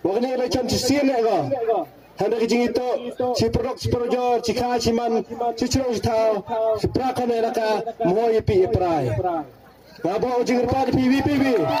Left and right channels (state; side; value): identical; both; correlation 1.00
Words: Wakni ile cam sisien lega. Handa kijing itu si produk si projor si kha si man si churong si thao si prakon elaka moy pi prai. Ngabo jing pa pi PVPV.